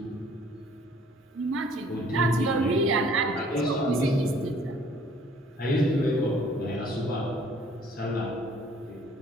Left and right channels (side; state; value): both; normal; correlation 0.57